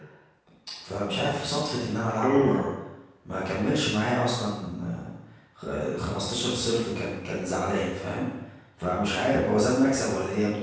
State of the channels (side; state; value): both; identical; correlation 1.00